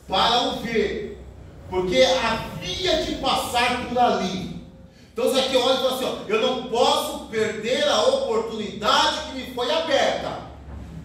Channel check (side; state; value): both; identical; correlation 1.00